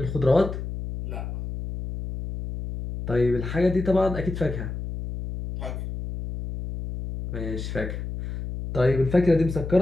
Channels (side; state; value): left; noise; hum, 7 dB below the sound